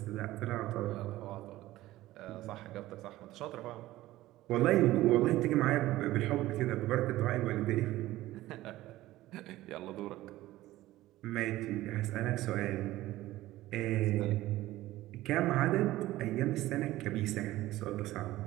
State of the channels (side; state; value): left; quieter; 16.2 dB